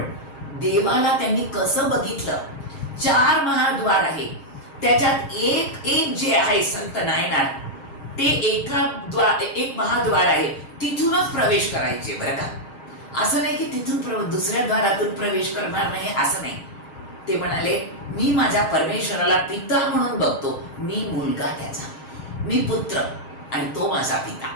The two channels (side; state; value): right; late; 6.4 ms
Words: देवाला त्यांनी कसं बघितलं. 4 महाद्वार आहे, त्याच्यात एक जे आहे संत नायनार, ते एक महाद्वार आहे, तिथूनच प्रवेश करायचे बरं का. असं नाही की तिथून दुसऱ्या द्वारातून प्रवेश करणार नाही, असं नाही. ते म्हणाले मी माझ्या परमेश्वराला पिता म्हणून बघतो, मी मुलगा त्याचा, मी पुत्र आणि तो माझा पिता.